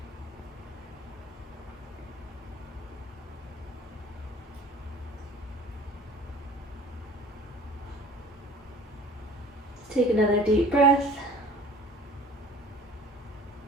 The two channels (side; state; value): both; normal; correlation 0.47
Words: Take another deep breath.